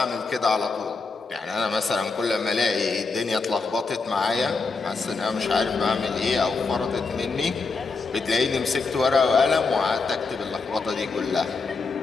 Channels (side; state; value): right; quieter; 4.2 dB